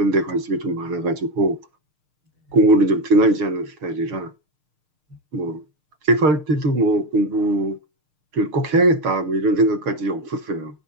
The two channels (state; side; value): late; left; 6.5 ms